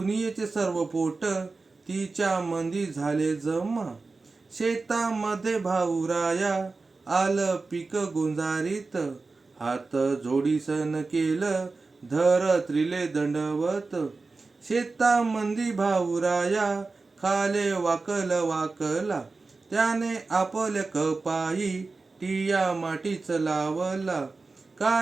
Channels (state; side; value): quieter; left; 3.8 dB